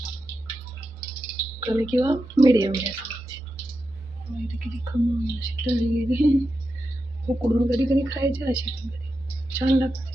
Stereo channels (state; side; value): noise; right; hum, 27 dB below the sound